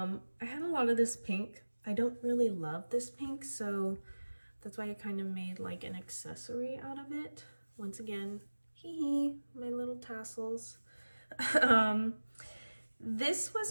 had a lot of this pink. I don't really love this pink, so that's why I kind of made like an accessory out of it. Once again, hee hee, my little tassels. This was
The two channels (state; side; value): inverted; both; correlation -1.00